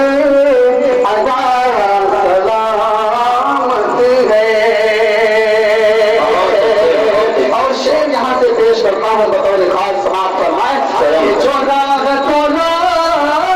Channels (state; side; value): identical; both; correlation 1.00